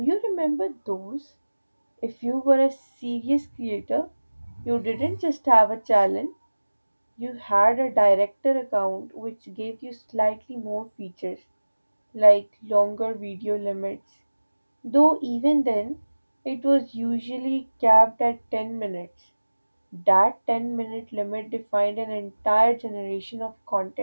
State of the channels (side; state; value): both; inverted; correlation -1.00